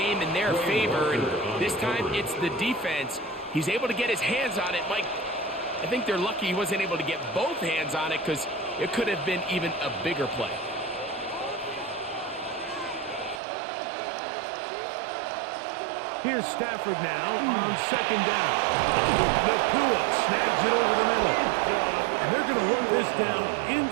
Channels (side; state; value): left; drops out; at 13.4 s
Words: in their favor. And this time, it's the defense. He's able to get his hands on it. Mike, I think they're lucky he wasn't able to get both hands on it because it could have been even a bigger play. Here's Stafford now on 2nd down. Nakua snags it over the middle. And they're going to work this down